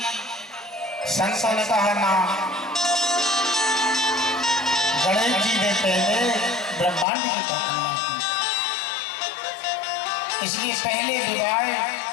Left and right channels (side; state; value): right; drops out; at 7.1 s